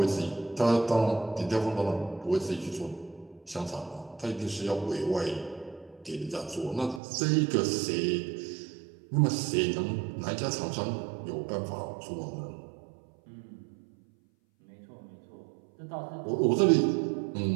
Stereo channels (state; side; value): drops out; left; at 7.0 s